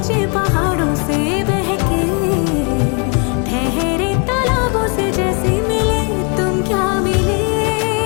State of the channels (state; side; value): quieter; right; 34.8 dB